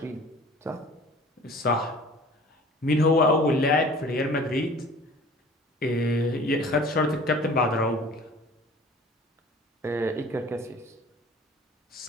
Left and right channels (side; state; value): both; normal; correlation 0.46